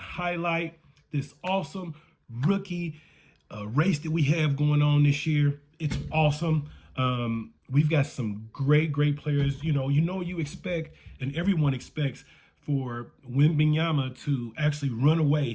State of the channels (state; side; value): identical; both; correlation 1.00